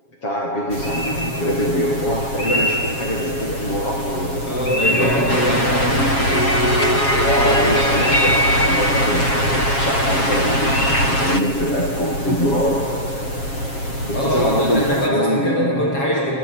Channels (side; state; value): right; late; 7.4 ms